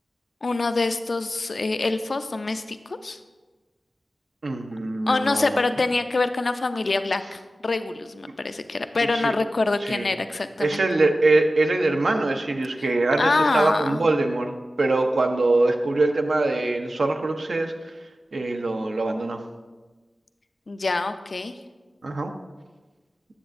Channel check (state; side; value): normal; both; correlation 0.94